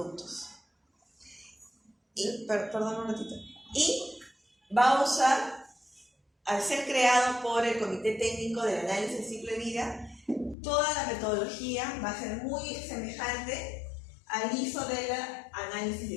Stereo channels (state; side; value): drops out; right; at 10.6 s